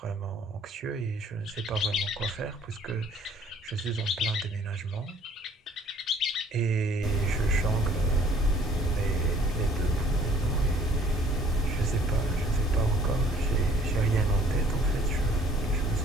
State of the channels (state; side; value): normal; both; correlation 0.57